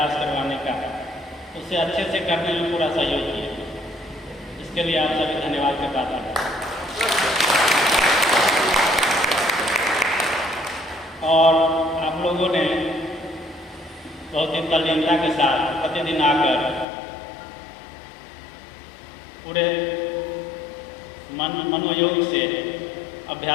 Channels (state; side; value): drops out; right; at 16.9 s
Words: करवाने का, उसे अच्छे से करने में पूरा सहयोग किया। इसके लिए आप सभी धन्यवाद के पात्र हैं। और आप लोगों ने बहुत ही तल्लीनता के साथ प्रतिदिन आकर पूरे मनोयोग से